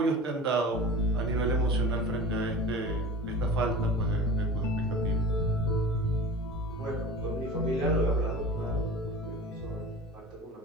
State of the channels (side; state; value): both; normal; correlation 0.36